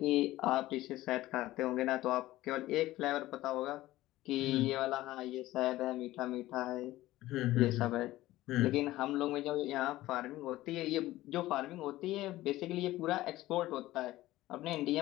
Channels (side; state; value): right; quieter; 16.5 dB